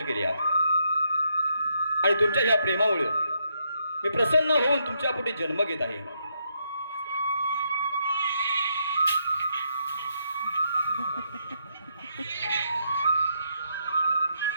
केली आहेत आणि तुमच्या या प्रेमामुळे मी प्रसन्न होऊन तुमच्या पोटी जन्म घेत आहे.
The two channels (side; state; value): both; inverted; correlation -0.77